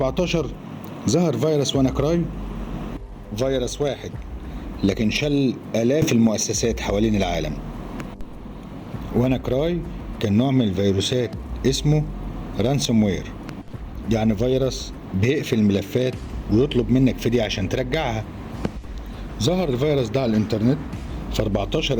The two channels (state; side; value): identical; both; correlation 1.00